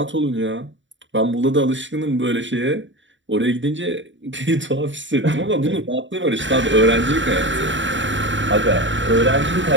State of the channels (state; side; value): late; left; 0.55 ms